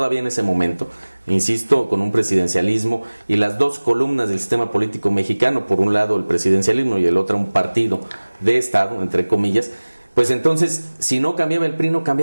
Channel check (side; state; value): both; inverted; correlation -1.00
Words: en ese momento, insisto, con un presidencialismo y las dos columnas del sistema político mexicano, por un lado el presidencialismo y el otro un partido de Estado, entre comillas, pues entonces, si no cambiaba el PRI, no